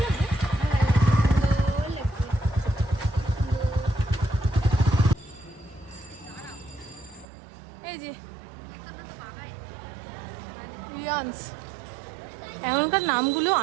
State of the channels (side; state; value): left; drops out; at 7.2 s